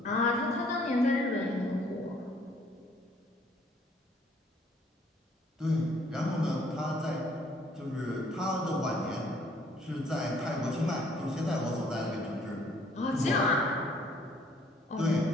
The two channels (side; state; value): both; normal; correlation 0.62